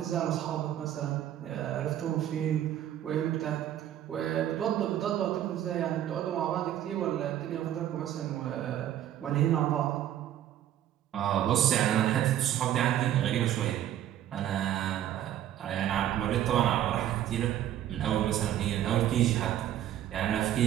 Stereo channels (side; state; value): left; quieter; 11.6 dB